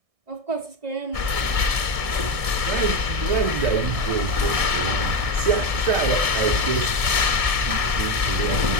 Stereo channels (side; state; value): left; late; 1.6 ms